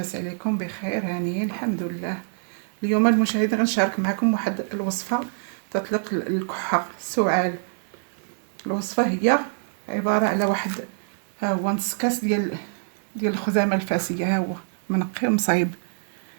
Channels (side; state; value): left; silent; digital silence